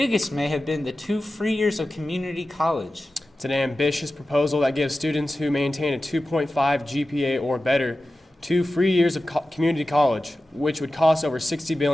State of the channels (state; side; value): normal; both; correlation 0.94